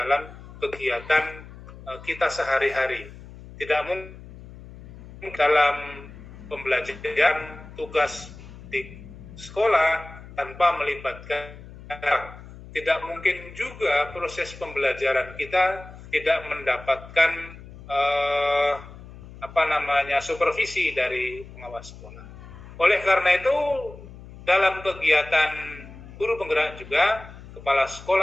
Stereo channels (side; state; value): left; noise; hum, 17 dB below the sound